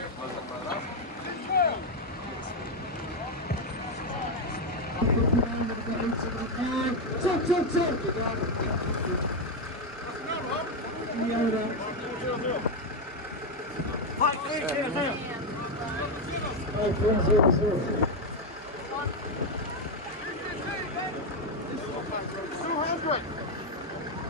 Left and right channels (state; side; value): normal; both; correlation 0.06